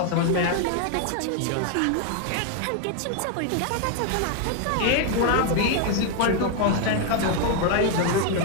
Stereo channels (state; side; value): different; both; correlation 0.01